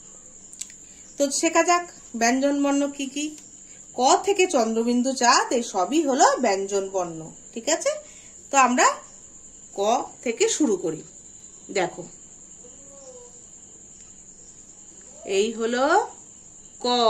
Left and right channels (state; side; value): identical; both; correlation 1.00